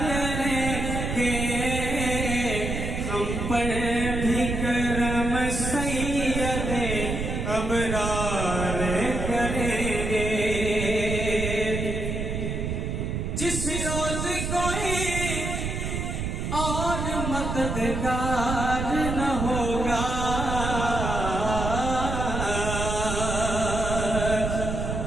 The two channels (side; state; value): right; noise; rumble, 3 dB below the sound